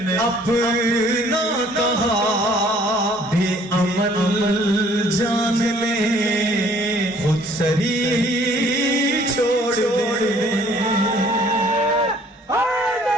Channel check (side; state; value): both; normal; correlation 0.58